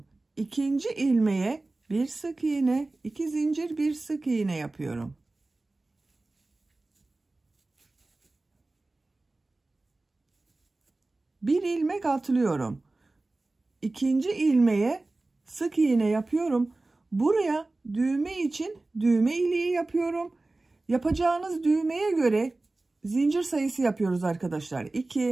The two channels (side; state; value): left; quieter; 3.1 dB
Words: İkinci ilmeğe bir sık iğne, 2 zincir, bir sık iğne yapıyorum. Bir ilmek atlıyorum. İkinci ilmeğe sık iğne yapıyorum. Buraya düğme için düğme iliği yapıyorum. Yapacağınız düğmeye göre zincir sayısı yapıyoruz arkadaşlar.